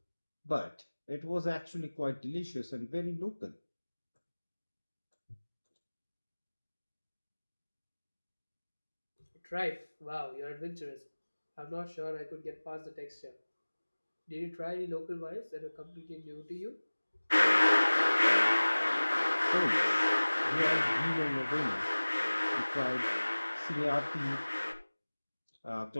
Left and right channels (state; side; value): inverted; both; correlation -1.00